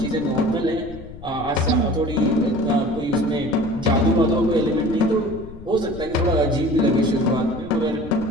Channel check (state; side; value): noise; left; rumble, 16 dB below the sound